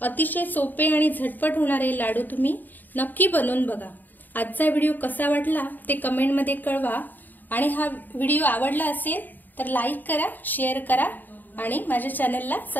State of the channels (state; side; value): late; right; 0.088 ms